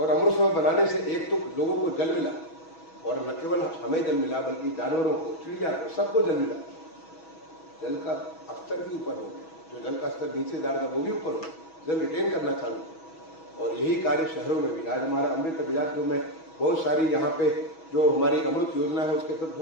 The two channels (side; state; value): right; late; 6.2 ms